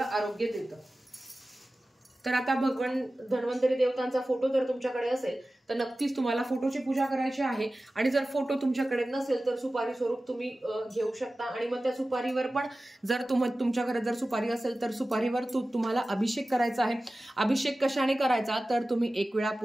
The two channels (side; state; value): both; normal; correlation 0.96